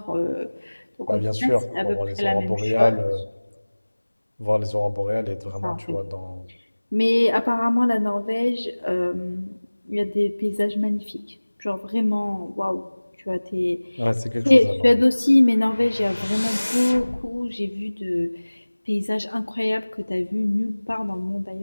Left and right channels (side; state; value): both; inverted; correlation -1.00